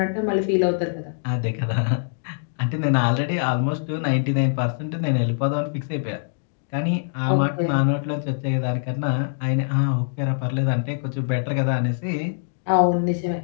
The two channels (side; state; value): right; silent; digital silence